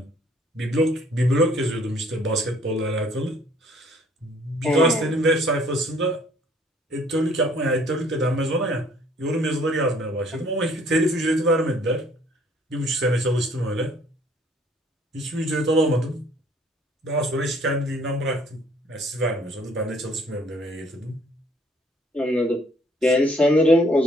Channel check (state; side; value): normal; both; correlation 0.60